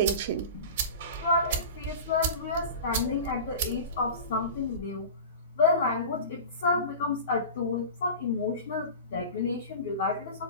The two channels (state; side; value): inverted; both; correlation -0.32